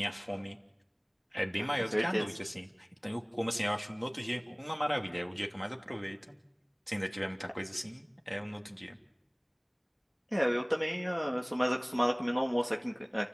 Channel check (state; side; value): identical; both; correlation 1.00